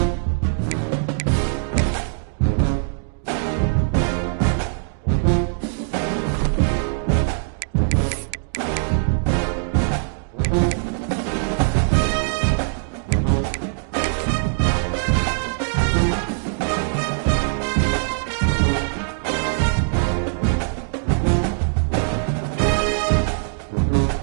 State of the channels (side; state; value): left; silent; digital silence